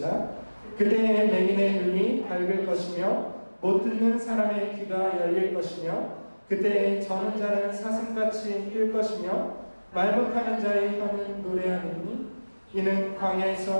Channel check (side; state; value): both; inverted; correlation -1.00